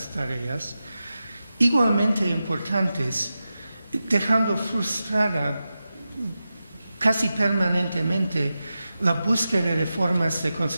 tareas igualmente importantes, dejando frustrada casi permanentemente la búsqueda de formas de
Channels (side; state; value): both; inverted; correlation -0.92